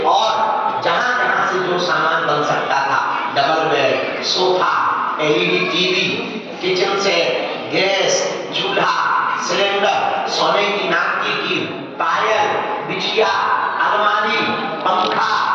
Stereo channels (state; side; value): identical; both; correlation 1.00